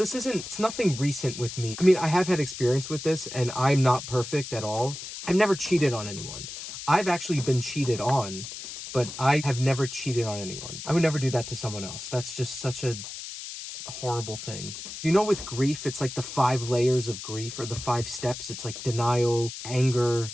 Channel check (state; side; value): noise; left; hiss, 10 dB below the sound